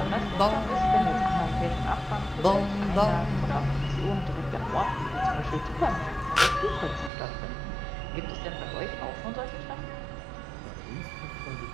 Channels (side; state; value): left; drops out; at 7.1 s